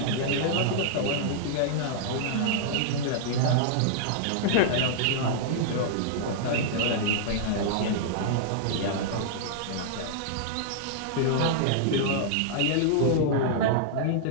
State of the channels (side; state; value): both; different; correlation -0.01